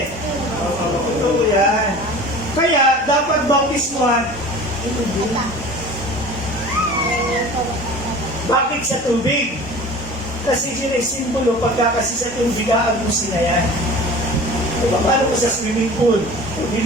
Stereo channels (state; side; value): normal; both; correlation 0.40